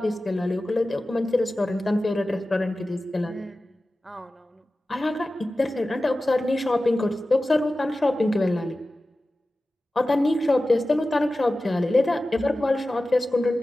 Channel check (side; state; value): both; normal; correlation 0.95